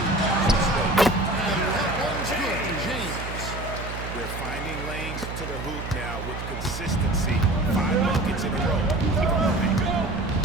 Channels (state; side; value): noise; right; hum, 8 dB below the sound